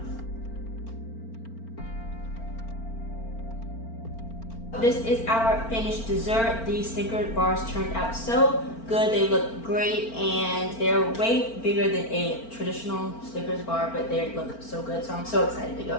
This is our finished dessert. These Snickers bars turned out so good. They look great, and they're way bigger than a traditional Snickers bar, but they look so good. So I'm so excited to go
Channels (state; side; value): late; right; 4.4 ms